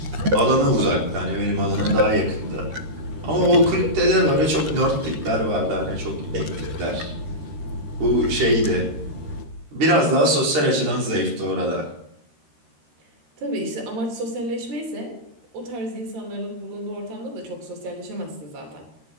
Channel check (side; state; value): left; late; 13 ms